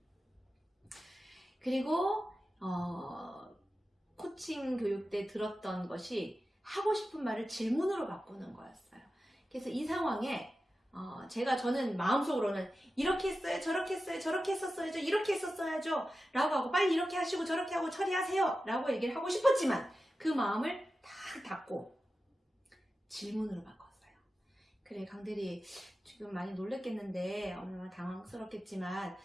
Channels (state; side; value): normal; both; correlation 0.93